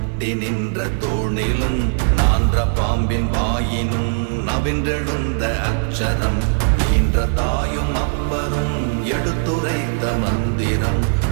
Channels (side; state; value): left; silent; 66 dB below the other